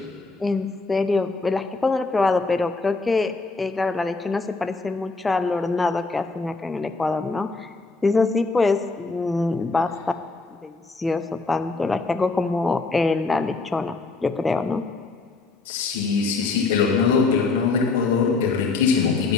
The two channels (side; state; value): right; quieter; 3.9 dB